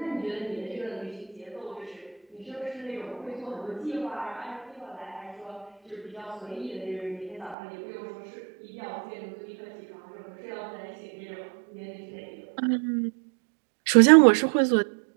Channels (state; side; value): drops out; left; at 7.6 s